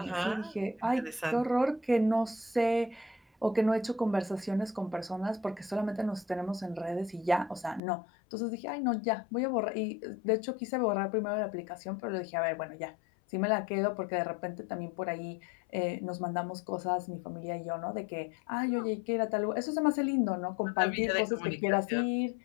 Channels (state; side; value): drops out; right; at 7.8 s